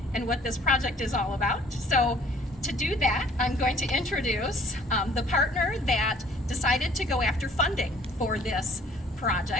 and what this project is all about. So to do that, I'm going to introduce the partner that decided to go after funding for this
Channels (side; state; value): both; normal; correlation 0.56